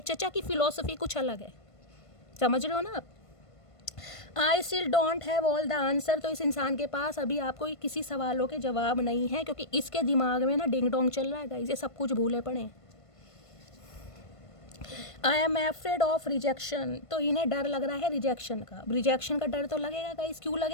चचा की फिलॉसफी कुछ अलग है, समझ रहे हो ना आप? I still don't have all the answer. तो इस इंसान के पास अभी आपको किसी सवालों के जवाब नहीं है, क्योंकि इसके दिमाग में ना डिंग डोंग चल रहा है गाइस, ये सब कुछ भूले पड़े हैं। I am afraid of rejection. तो इन्हें डर लग रहा है रिजेक्शन का। रिजेक्शन का डर तो लगेगा गाइस, क्यों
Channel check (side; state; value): right; late; 1.5 ms